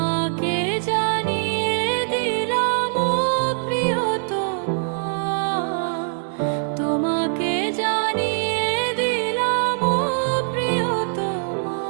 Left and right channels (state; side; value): silent; left; 64 dB below the other